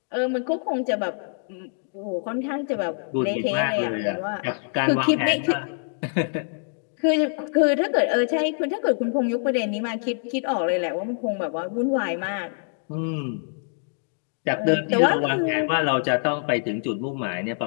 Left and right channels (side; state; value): right; silent; digital silence